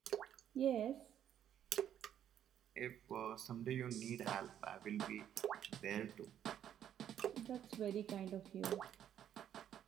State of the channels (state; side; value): quieter; left; 10.1 dB